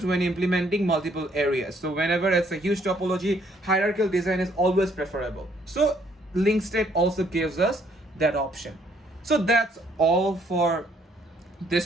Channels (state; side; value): normal; both; correlation 0.66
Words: when implementing multiple areas. So whenever it's a huge topology, hierarchical design is always preferable. So link state also gives us that option. So that's all for this